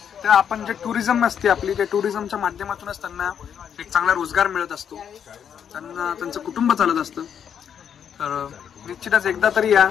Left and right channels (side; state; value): right; quieter; 8.2 dB